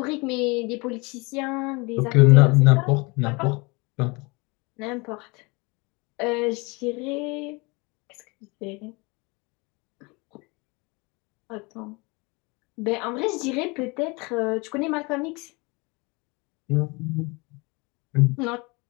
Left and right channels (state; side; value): quieter; right; 27.1 dB